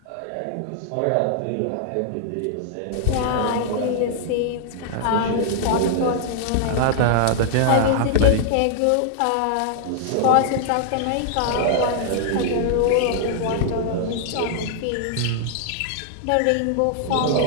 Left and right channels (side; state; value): both; different; correlation -0.01